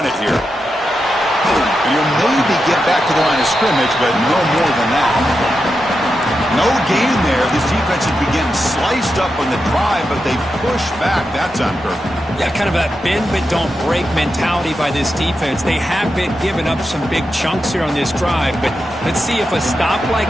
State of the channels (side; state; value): both; normal; correlation 0.88